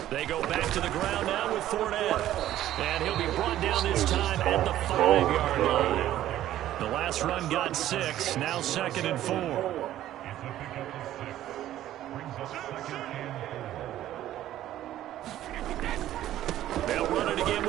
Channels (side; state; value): left; quieter; 13.0 dB